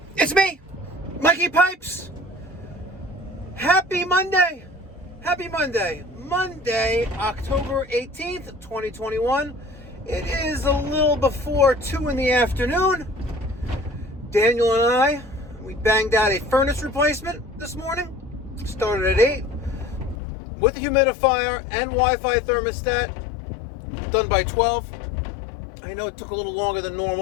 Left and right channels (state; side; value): drops out; right; at 20.2 s